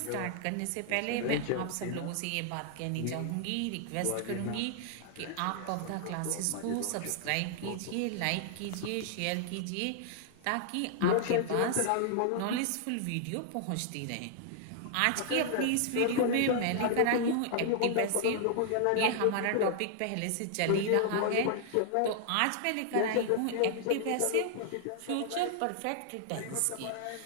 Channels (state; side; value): different; both; correlation -0.01